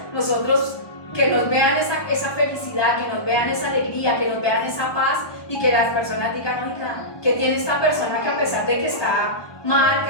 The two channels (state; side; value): late; right; 1.2 ms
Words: nosotros que nos vean esa felicidad, que nos vean esa alegría, que nos vean esa paz y que las personas digan, oiga, ¿qué tiene esta persona que a pesar de que está mal, que